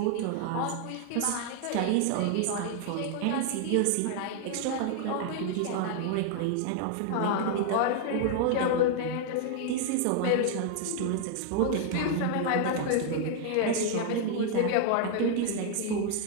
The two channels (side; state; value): both; different; correlation 0.00